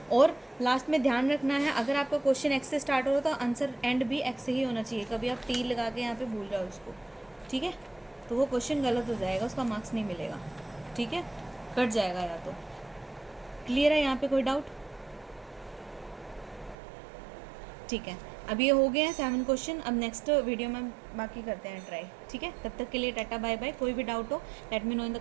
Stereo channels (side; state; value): left; drops out; at 16.8 s